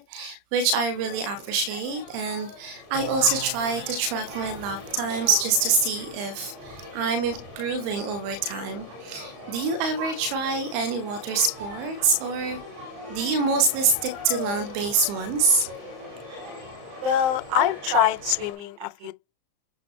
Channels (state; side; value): late; left; 35 ms